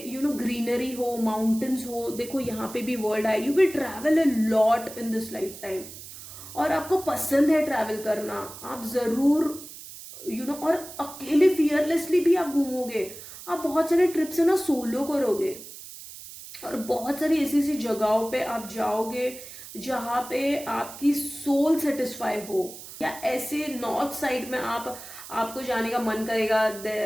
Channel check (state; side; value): noise; right; hiss, 14 dB below the sound